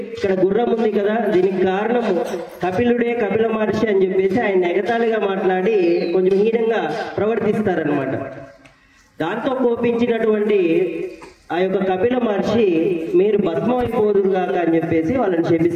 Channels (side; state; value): both; identical; correlation 1.00